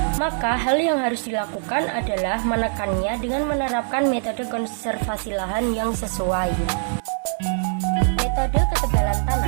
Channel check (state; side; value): silent; left; digital silence